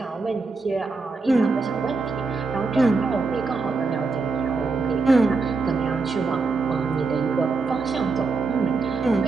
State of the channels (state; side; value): quieter; left; 4.0 dB